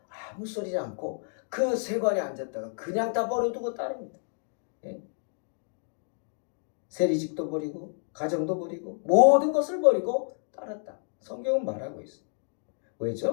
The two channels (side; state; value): right; silent; 57 dB below the other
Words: 아무 소리지 않고 그 세관에 앉았다가 그냥 다 버려두고 따릅니다. 예? 세리직도 버리고 가정도 버리고 모든 것을 버리고 따랐다. 성경은 말하고 있어요.